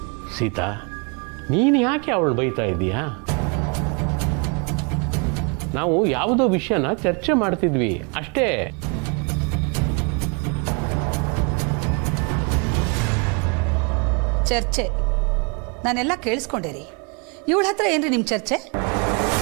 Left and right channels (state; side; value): quieter; left; 33.3 dB